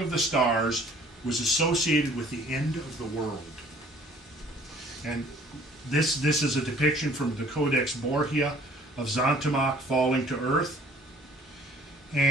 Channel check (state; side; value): normal; both; correlation 0.55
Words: of the stars was associated with the end of the world. And this is a depiction from the Codex Borgia of Zontamach falling to earth.